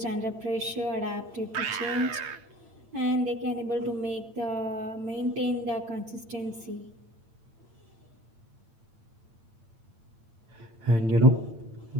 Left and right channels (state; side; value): late; left; 8.9 ms